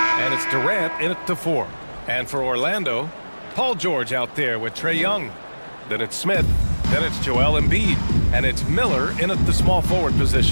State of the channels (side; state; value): both; inverted; correlation -1.00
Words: And it's Durant in at the 4. And for Orlando, Paul George out there with Trae Young. Then it's Smith. Then it's Joel Embiid. And it's Miller in at the small forward